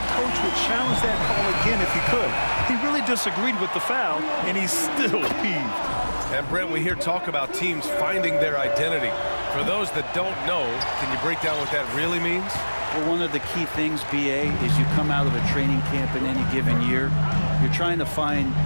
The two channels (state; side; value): inverted; both; correlation -1.00